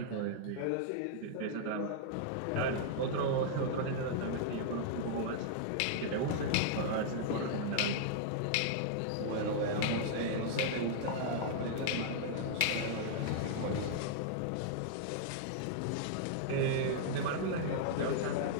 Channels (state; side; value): different; both; correlation -0.01